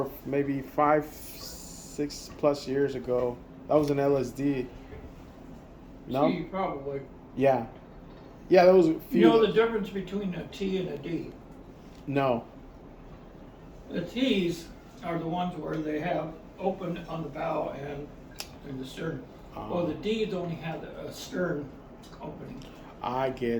maybe 5, 6+ years ago. That was an LSD. No? C, probably. Yeah. Yeah, there was a You few. know the difference between a T and a D? No. The T's are the ones where they have open on the bow and in the stern. Well, the D's only have a stern opening. I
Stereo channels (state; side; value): identical; both; correlation 1.00